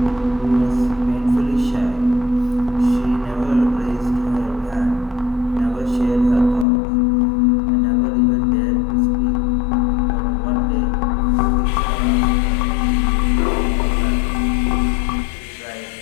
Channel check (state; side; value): drops out; right; at 6.7 s